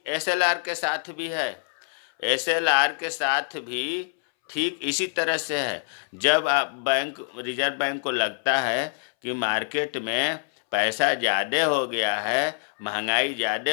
SLR के साथ भी है। SLR के साथ भी ठीक इसी तरह से है। जब आप रिजर्व बैंक को लगता है कि मार्केट में पैसा ज़्यादा हो गया है, महंगाई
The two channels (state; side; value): silent; right; 61 dB below the other